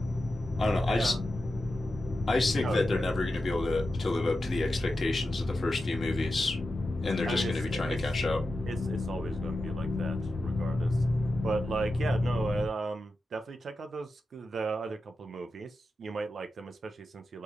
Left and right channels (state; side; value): normal; both; correlation 0.91